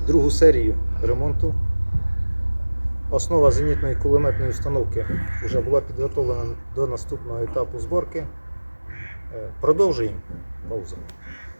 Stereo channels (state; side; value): inverted; both; correlation -1.00